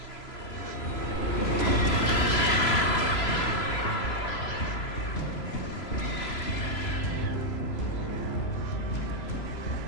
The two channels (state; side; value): late; right; 3.0 ms